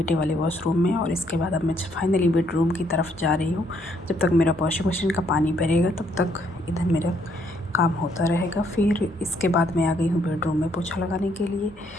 वाले वॉशरूम में। और इसके बाद अब मैं फाइनली बेडरूम की तरफ जा रही हूँ। जब तक मेरा वॉशिंग मशीन का पानी भरेगा तब तक इधर मेरा काम होता रहेगा। फिर इसके बाद मैं आ गई हूँ बेडरूम में पोछा लगाने के लिए।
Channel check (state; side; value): normal; both; correlation 0.70